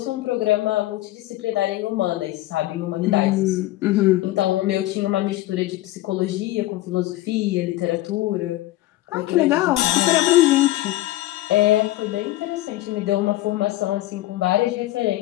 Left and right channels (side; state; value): right; quieter; 16.5 dB